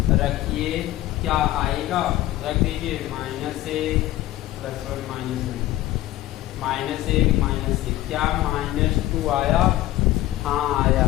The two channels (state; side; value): quieter; right; 15.3 dB